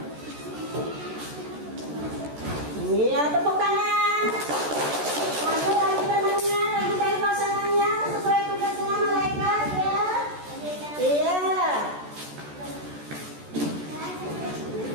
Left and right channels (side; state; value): left; late; 14 ms